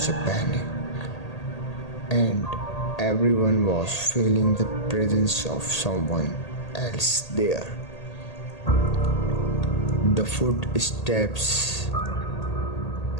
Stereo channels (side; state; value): right; late; 1.8 ms